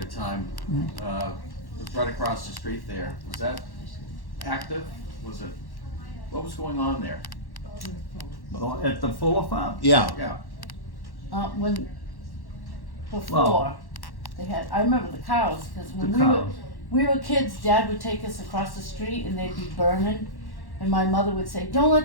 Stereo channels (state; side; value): late; right; 1.1 ms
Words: of time? It was right across the street there. Was that active? Was it, what was going on there? At the Fuller Farm? Yeah, Yeah. When, before, Well- they had, I remember the cows, cause when The we were, cows. we were kids, Dad would take us across the street and they'd be burning. And my mother would say, don't